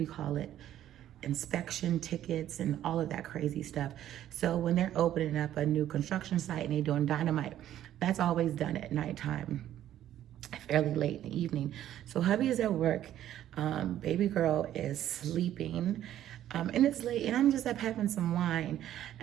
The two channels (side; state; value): left; quieter; 12.0 dB